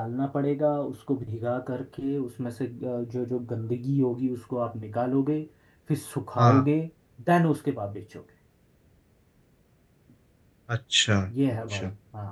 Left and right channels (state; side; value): identical; both; correlation 1.00